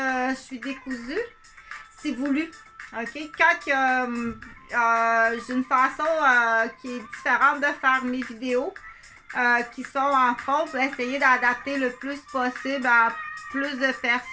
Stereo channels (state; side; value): identical; both; correlation 1.00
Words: je suis décousue, c'est voulu. OK? Quand j'ai une façon qui est différente de faire mes vidéos, qui sont entre autres essayer d'adapter le plus possible à plus de